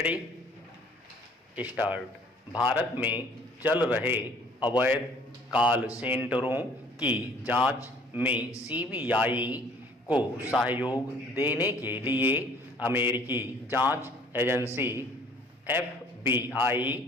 start. Bharat में चल रहे अवैध कॉल सेंटरों की जांच में सीबीआई को सहयोग देने के लिए अमेरिकी जांच एजेंसी एफबीआई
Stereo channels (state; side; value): normal; both; correlation 0.55